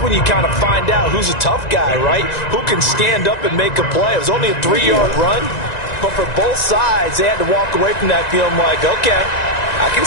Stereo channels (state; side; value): late; right; 1.9 ms